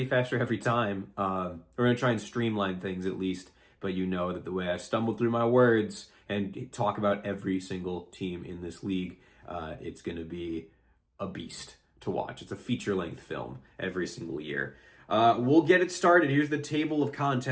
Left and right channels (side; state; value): both; identical; correlation 1.00